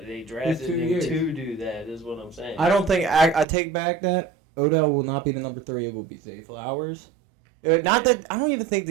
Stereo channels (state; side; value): drops out; left; at 3.5 s